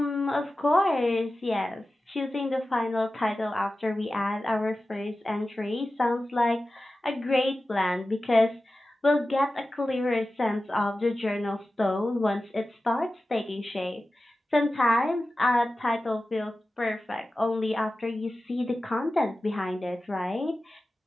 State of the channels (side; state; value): both; normal; correlation 0.95